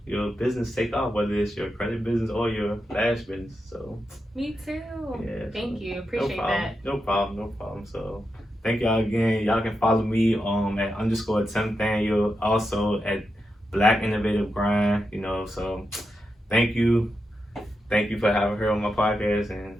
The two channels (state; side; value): normal; both; correlation 0.87